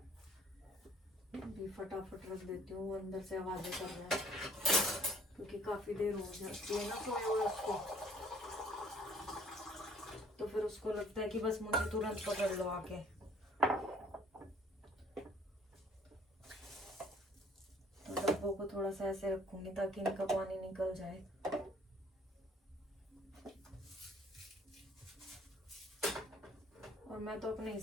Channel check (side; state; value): both; normal; correlation 0.57